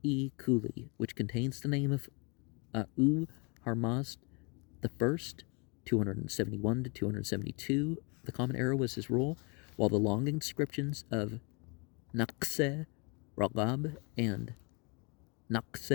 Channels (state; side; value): quieter; right; 32.0 dB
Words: Kuli, which contains the name of Harmazd I, 271 to 272. The Common Era was his rule, while the long inscriptions of Naqse Ragab and